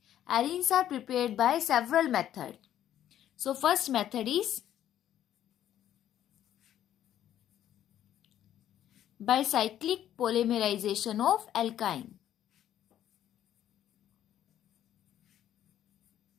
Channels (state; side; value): quieter; right; 11.3 dB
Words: Arenes are prepared by several methods. So first method is by cyclic polymerization of alkyne.